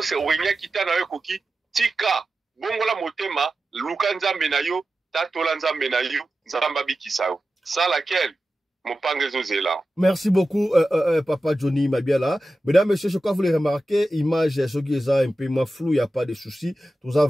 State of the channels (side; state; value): both; normal; correlation 0.93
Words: wenya kitana yo koki tika bongola motema luka nzambe na yo tatola nzambe na yo nzamba bikisa yo ça laquelle. Merci beaucoup, Papa Johnny Mabiala. Mesdames, messieurs, je crois que vous les remarquez, image, ce qui est un peu moins flou, il n'y a pas de souci. Tout ça